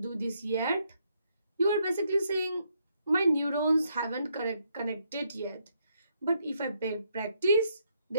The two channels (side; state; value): both; inverted; correlation -0.75